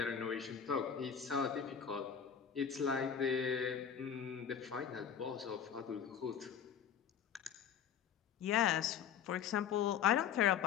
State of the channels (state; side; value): quieter; right; 8.1 dB